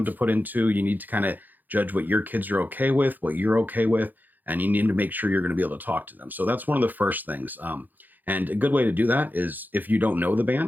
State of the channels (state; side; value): late; left; 0.085 ms